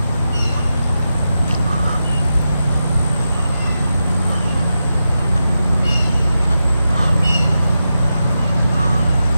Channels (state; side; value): inverted; both; correlation -0.89